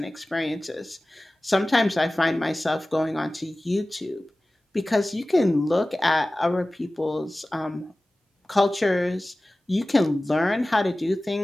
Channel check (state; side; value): normal; both; correlation 0.97